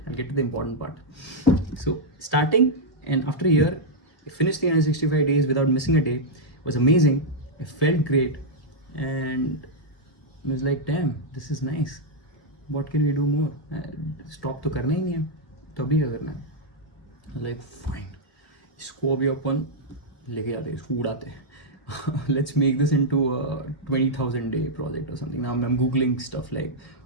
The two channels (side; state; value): right; late; 1.5 ms